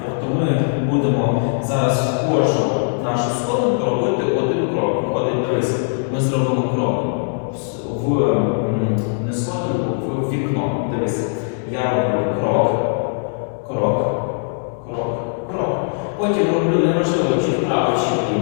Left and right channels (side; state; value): right; silent; digital silence